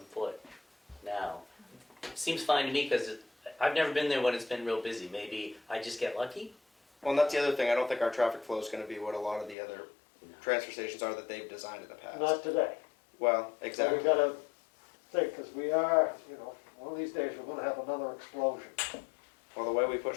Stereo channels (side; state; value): right; drops out; at 9.6 s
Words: foot now. Seems fine to me because I've never been there when it's been real busy. Maybe I just get lucky. Well, and that's the other thing. I don't think our traffic flow is going to be what a lot of the other transfer stations are that they've designed in the past. Not today. Well, So exactly. we gotta think, because we are, one of these days we're gonna have another explosion. Well, the way we